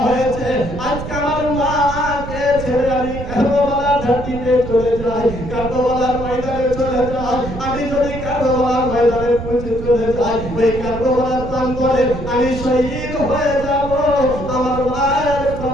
হয়েছে। আজকে আমার মাকে ছেড়ে আমি কারবালার ঘাটিতে চলে যাই, কারবালার ময়দানে চলে যাই। আমি যদি কারবালার ময়দানে পৌঁছে চলে যাই, ওই কারবালার প্রান্তরে আমি শহীদ হয়ে যাব। আমার মায়ের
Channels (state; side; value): noise; right; rumble, 9 dB below the sound